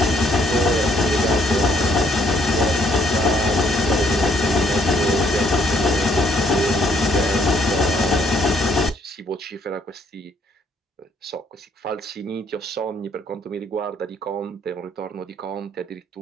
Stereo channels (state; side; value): normal; both; correlation 0.67